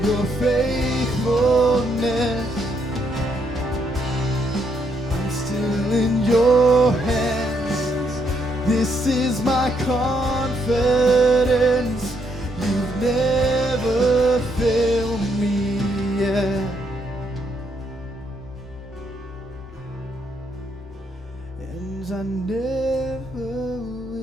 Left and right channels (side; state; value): both; normal; correlation 0.74